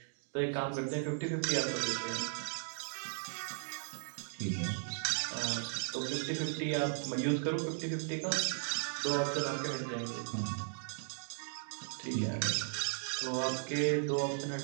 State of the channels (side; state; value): left; silent; digital silence